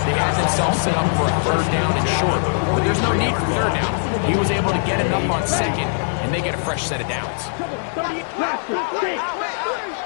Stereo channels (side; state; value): right; silent; digital silence